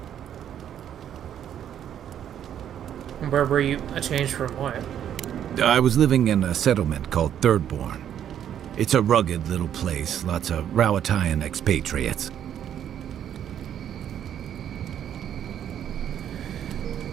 Where were you? A change from what? I was living in a settlement called Thirdborn. It's a rugged little place, lots of Rowatayan expatriates.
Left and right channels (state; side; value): quieter; left; 9.9 dB